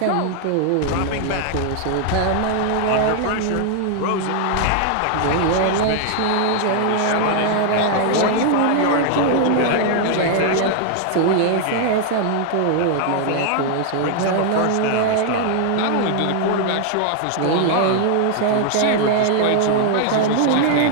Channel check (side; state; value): both; different; correlation 0.00